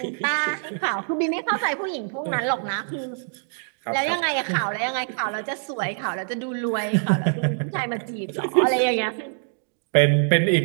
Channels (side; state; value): left; silent; 60 dB below the other